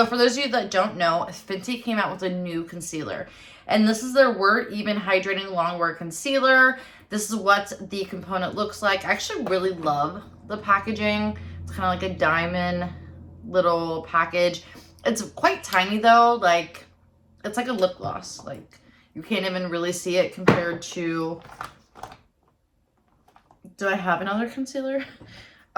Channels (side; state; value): both; identical; correlation 1.00